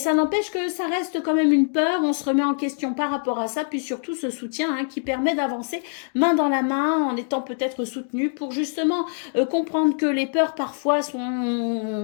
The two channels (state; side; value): silent; right; 63 dB below the other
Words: n'empêche que ça reste quand même une peur, on se remet en question par rapport à ça, puis surtout ce soutien hein, qui permet d'avancer main dans la main en étant peut-être soutenu pour justement comprendre que les peurs parfois